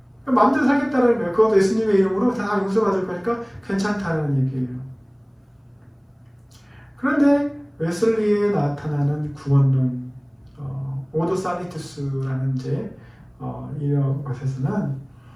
마음대로 살겠다는 거예요. 그것도 예수님의 이름으로 다 용서받을 거니까 괜찮다는 얘기예요. 그런데 웨슬리에 나타나는 구원론, 오도 살리투스라는 이제 이런 것에서는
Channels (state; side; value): identical; both; correlation 1.00